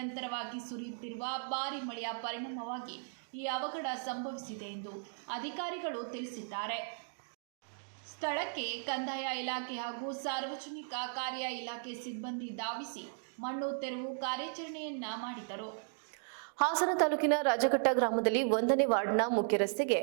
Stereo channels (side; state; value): left; silent; digital silence